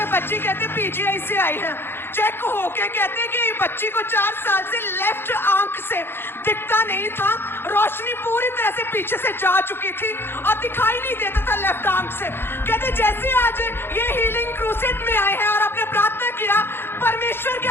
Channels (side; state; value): right; late; 0.11 ms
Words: बच्ची कहते पीजीआई से आई है, चेक होके कहते कि बच्ची को 4 साल से लेफ्ट आंख से दिखता नहीं था, रोशनी पूरी तरह से पीछे से जा चुकी थी और दिखाई नहीं देता था लेफ्ट आंख से। कहते जैसे आज ये हीलिंग क्रूसेड में आए हैं और आपने प्रार्थना किया, परमेश्वर की